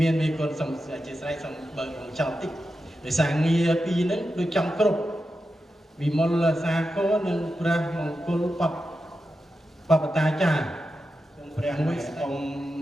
ានមេគុណសូមអធិស្ឋានសូមបើកចោលតិច ដោយសារងារពីរហ្នឹងដូចចំគ្រប់វិមលសាគរនិងព្រះមង្គលបព្វតាចារ្យសូមព្រះមួយអង្គ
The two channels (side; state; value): both; normal; correlation 0.90